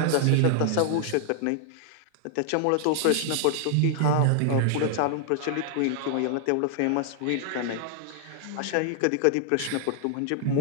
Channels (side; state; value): both; different; correlation 0.00